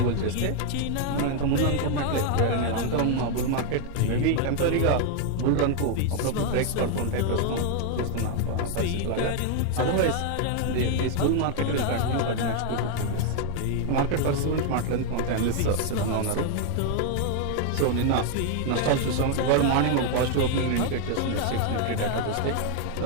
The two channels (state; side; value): different; both; correlation 0.00